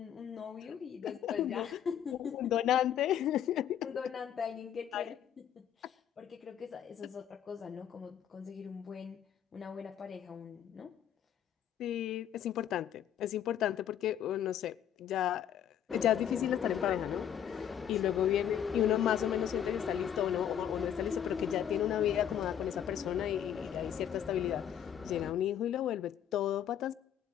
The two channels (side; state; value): right; quieter; 9.6 dB